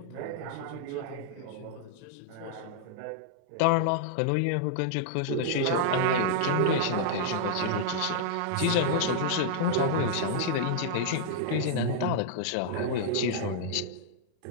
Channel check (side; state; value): both; different; correlation -0.01